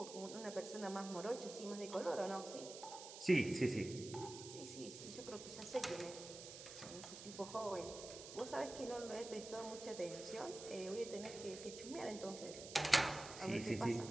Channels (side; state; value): right; noise; hiss, 11 dB below the sound